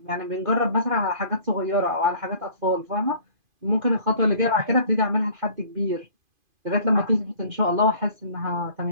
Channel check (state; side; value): late; left; 2.5 ms